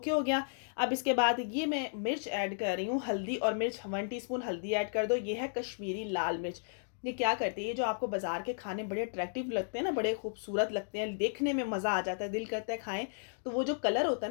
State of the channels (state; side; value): silent; right; digital silence